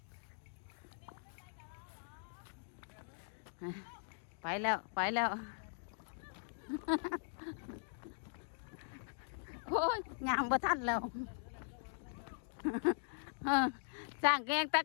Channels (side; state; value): right; silent; digital silence